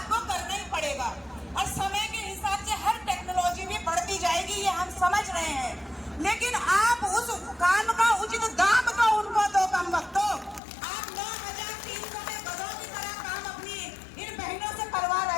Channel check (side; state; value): right; drops out; at 10.6 s